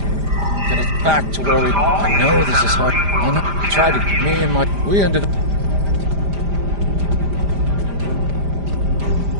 Get us back to where we... I know this is hard. I know. Tried to... We ended up...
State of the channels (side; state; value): left; late; 5.0 ms